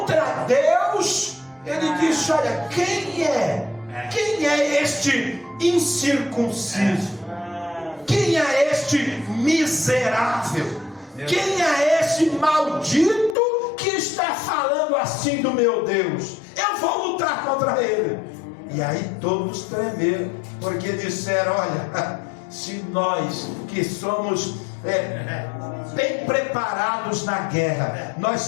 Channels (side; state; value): right; drops out; at 13.4 s